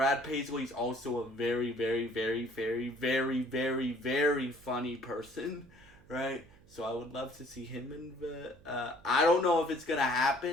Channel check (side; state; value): right; noise; hum, 26 dB below the sound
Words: Paisley is also a very, very, very, very, very, very, very funny person, right? So I would love to see him in the... I don't know if it's going to